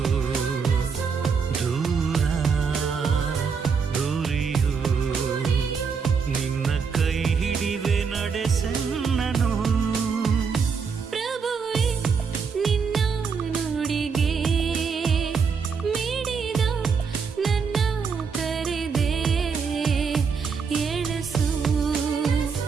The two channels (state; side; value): quieter; left; 5.7 dB